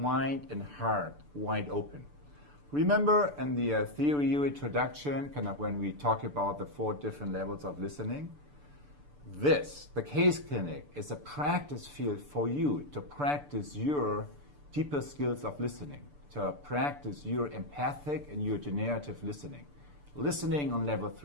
and heart wide open. Remember in the Theory U introduction, when we talk about the 4 different levels of listening? The case clinic, is a practice field for you to practice your deeper skills of listening, to practice your empathic and your generative listening on level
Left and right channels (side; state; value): left; late; 6.9 ms